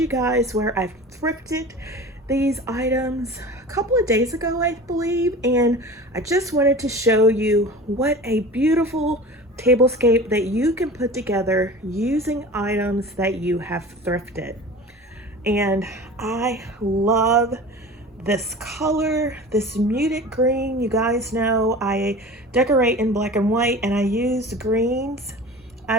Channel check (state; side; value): normal; both; correlation 0.37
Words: guys where I've thrifted these items a couple of days ago, I believe, and I just wanted to show you what a beautiful tablescape that you can put together using items that you have thrifted. And I love this color, this muted green. You guys know I decorate in black and white, and I use greens